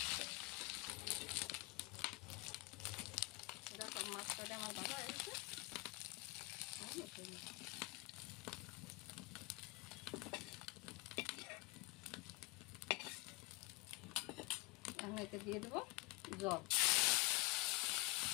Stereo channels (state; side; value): quieter; right; 22.6 dB